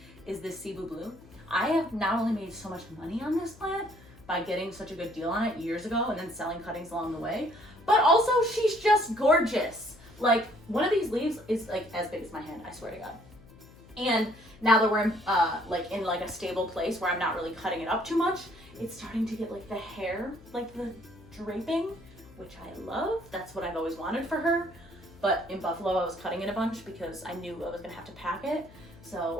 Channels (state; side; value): noise; left; hum, 22 dB below the sound